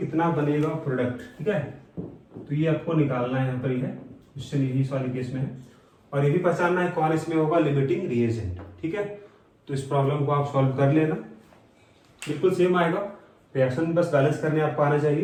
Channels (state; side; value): identical; both; correlation 1.00